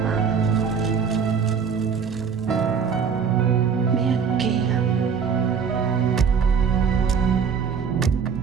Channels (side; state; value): left; quieter; 6.4 dB